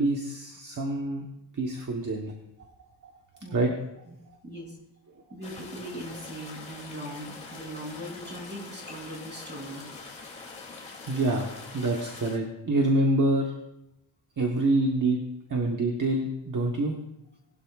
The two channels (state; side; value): normal; both; correlation 0.39